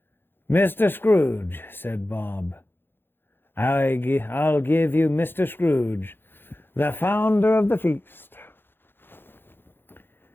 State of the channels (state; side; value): late; right; 0.10 ms